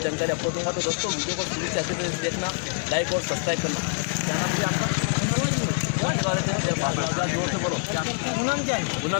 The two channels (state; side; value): silent; right; 55 dB below the other